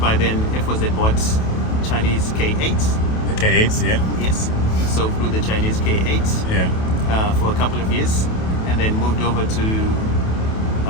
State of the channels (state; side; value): late; right; 28 ms